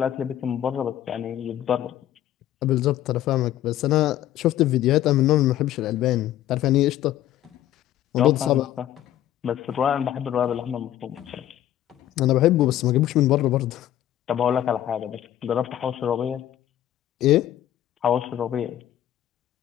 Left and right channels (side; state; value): right; quieter; 12.4 dB